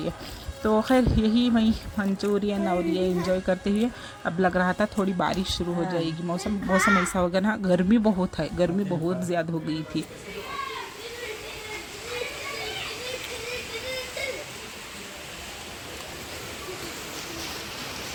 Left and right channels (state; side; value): identical; both; correlation 1.00